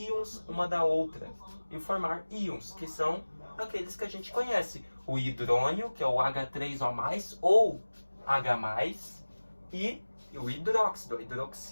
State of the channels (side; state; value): both; inverted; correlation -1.00